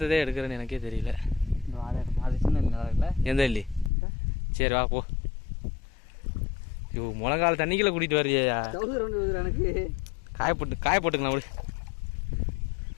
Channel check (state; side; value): drops out; right; at 3.9 s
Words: எடுக்கிறேன்னு எனக்கே தெரியல. எந்த இல்லி? சரி வா போ. ஐயோ முழங்கால தண்ணிக்குள்ள கூட்டிகிட்டு வர்றியா? எனக்கு காய போட்டுக்கலாம் விடு.